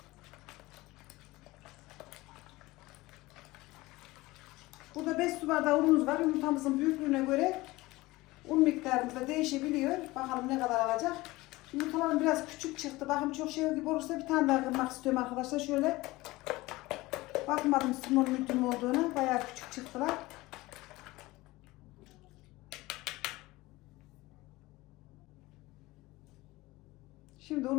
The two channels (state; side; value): quieter; right; 20.1 dB